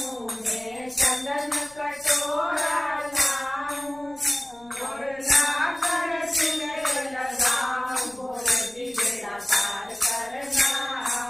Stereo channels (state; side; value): noise; left; rumble, 27 dB below the sound